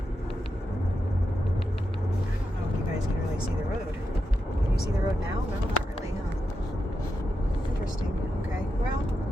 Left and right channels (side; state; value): both; normal; correlation 0.87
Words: I don't know if you guys can really see the road. Can you see the road now? No, not really, huh? Interesting. Okay. Well,